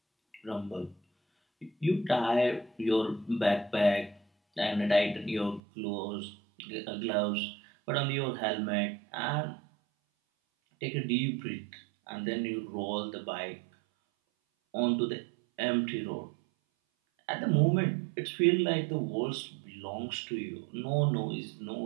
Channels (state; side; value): drops out; left; at 5.6 s